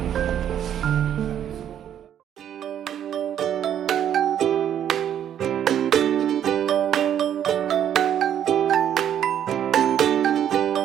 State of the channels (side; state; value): left; quieter; 9.9 dB